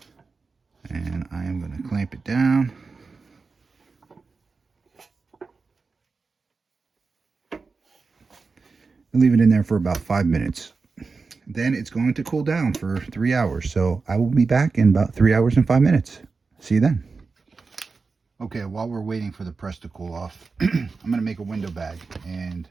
And I am going to clamp it down. And leave it in there for about 5 minutes. Then it's going to cool down for 3 hours. So I will be back in about 3 hours and 5 minutes. See you then. Okay, while we're waiting for the press to cool off, I'm going to make a window bag. And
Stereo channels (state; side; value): quieter; left; 4.4 dB